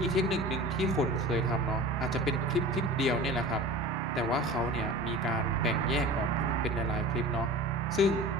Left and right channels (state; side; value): normal; both; correlation 0.37